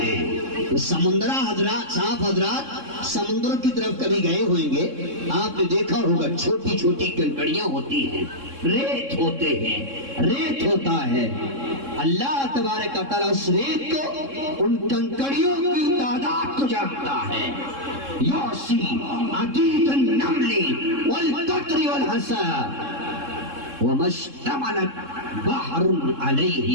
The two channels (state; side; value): late; left; 3.6 ms